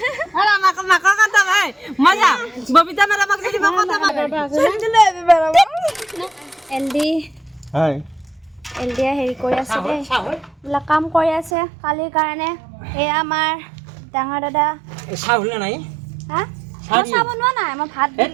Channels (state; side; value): drops out; left; at 11.5 s